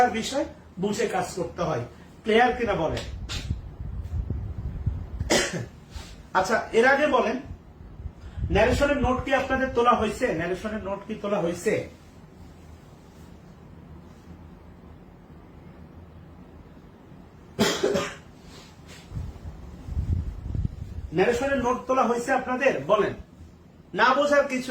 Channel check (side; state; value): both; identical; correlation 1.00